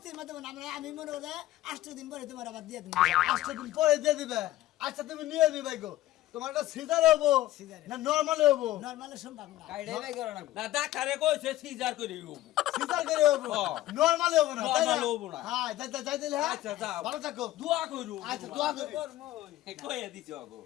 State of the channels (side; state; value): right; quieter; 15.2 dB